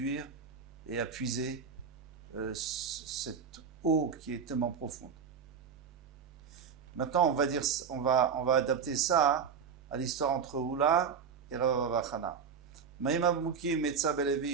et à puiser cette eau qui est tellement profonde. Maintenant, on va adapter ça à l'histoire entre Oula et Rav Chana. Maïma Mouki Metza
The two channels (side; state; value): left; quieter; 6.5 dB